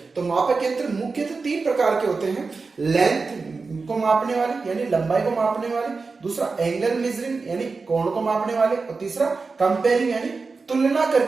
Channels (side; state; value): left; quieter; 4.3 dB